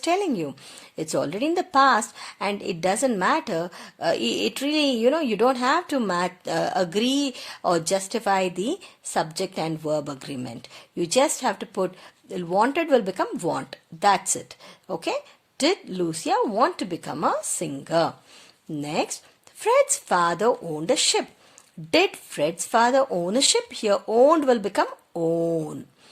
you. It's already in the past, and it doesn't matter. It really, you don't have to agree or justify the subject and verb agreement. You just have to put wanted will become want. That's it. Okay. Did Lucia want to become a singer? Next, Fred's father owned a ship. Did Fred's father own a ship? Here owned will become own.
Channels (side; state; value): both; identical; correlation 1.00